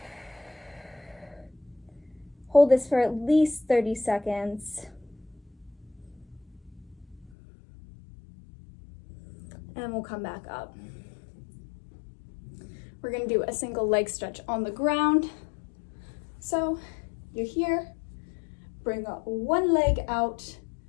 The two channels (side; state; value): right; drops out; at 7.3 s